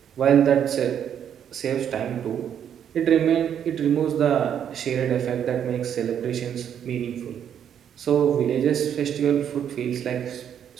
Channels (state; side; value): quieter; left; 9.0 dB